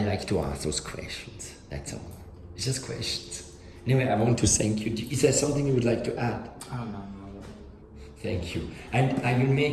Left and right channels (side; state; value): both; identical; correlation 1.00